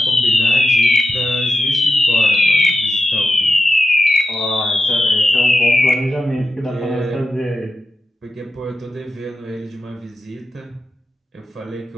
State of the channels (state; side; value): normal; both; correlation 0.89